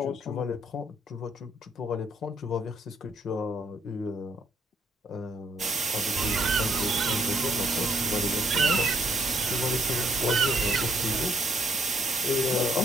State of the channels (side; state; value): both; normal; correlation 0.69